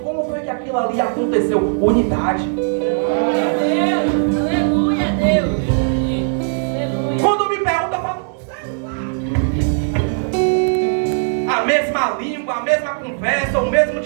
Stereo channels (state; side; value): silent; left; digital silence